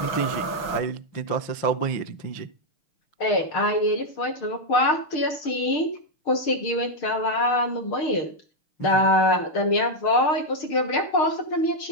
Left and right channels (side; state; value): right; late; 6.5 ms